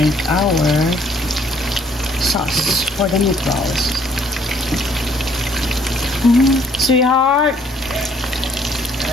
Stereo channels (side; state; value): both; normal; correlation 0.64